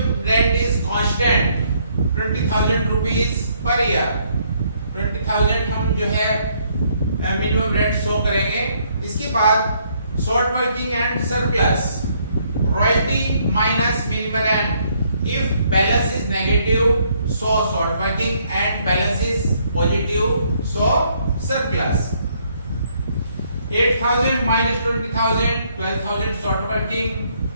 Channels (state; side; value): inverted; both; correlation -0.69